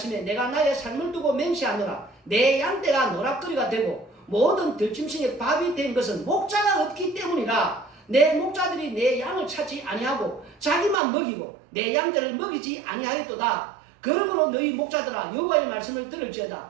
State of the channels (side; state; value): left; drops out; at 11.0 s